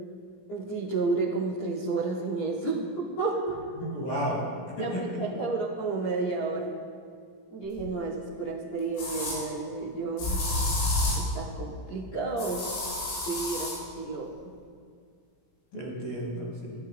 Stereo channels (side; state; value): right; late; 17 ms